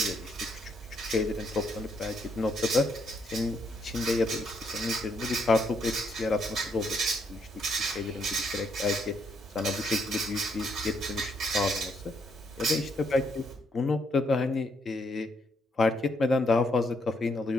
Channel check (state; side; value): normal; both; correlation 0.74